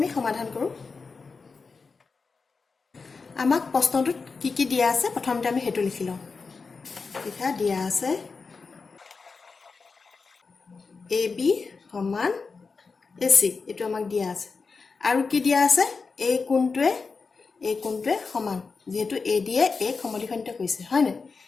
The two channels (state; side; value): quieter; right; 4.6 dB